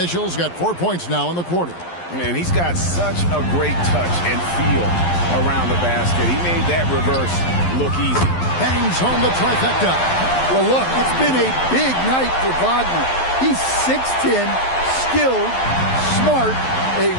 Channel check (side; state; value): right; late; 11 ms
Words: got 4 points now in the quarter. And he's got such a great touch and feel around the basket. He made that reverse look easy. Bangs home the trifecta. Well, look, it's been a big night for Wagner. He's 6'10", skilled, smart, a